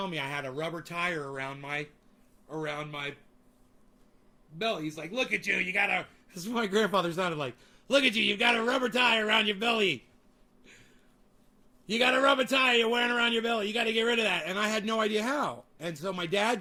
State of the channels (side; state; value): both; identical; correlation 1.00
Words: me I had a rubber tire around my belly. He's like, look at you, you got a... This is what my grandfather sounded like. Look at you, you've got a rubber tire around your belly. You got a rubber tire you're wearing around your belly. You got to get rid of that. And I had no idea how. And so my dad